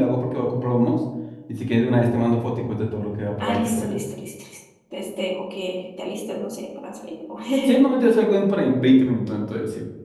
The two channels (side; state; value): both; identical; correlation 1.00